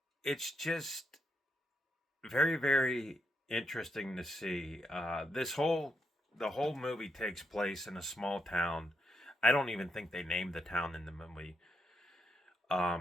it's just very, very interesting to see. The whole movie takes place in a small town. I don't even think they named the town in the movie.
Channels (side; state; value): both; normal; correlation 0.80